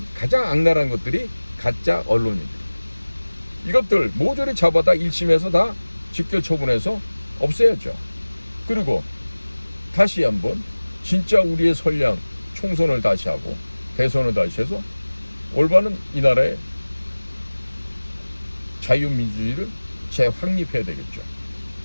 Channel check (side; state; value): both; inverted; correlation -1.00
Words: 가장 악랄한 것들이 가짜 언론인들. 이것들 모조리 잡아다 1심에서 다 직결 처분해서 없애야죠. 그리고 다시 한번 진짜 우리의 선량 총선을 다시 하고 대선을 다시 해서 올바른 이 나라의 자유민주주의를 재확립해야 되겠죠.